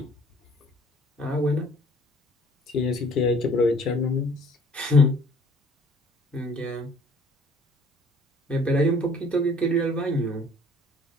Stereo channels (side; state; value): both; normal; correlation 0.55